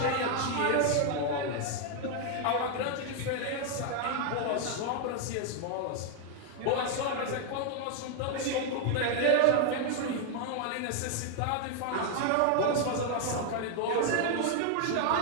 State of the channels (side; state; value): both; different; correlation 0.00